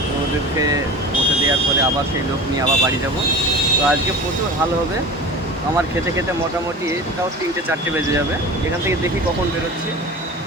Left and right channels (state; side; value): normal; both; correlation 0.35